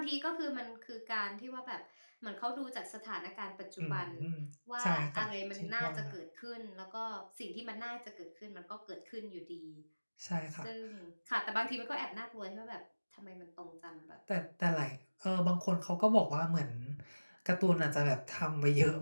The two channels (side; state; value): both; inverted; correlation -1.00